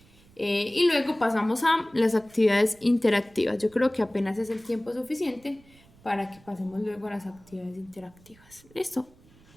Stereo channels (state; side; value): noise; right; rumble, 27 dB below the sound